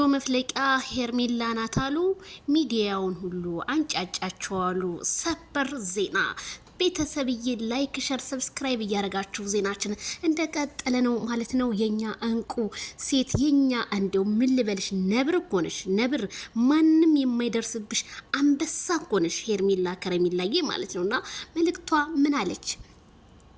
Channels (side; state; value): both; identical; correlation 1.00